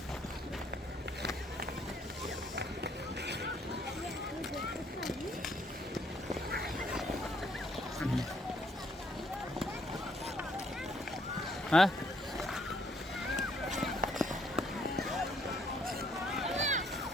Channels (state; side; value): normal; both; correlation 0.67